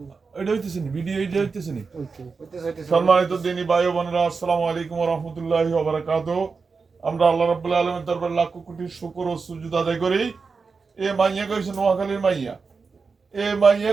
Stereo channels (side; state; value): left; quieter; 4.8 dB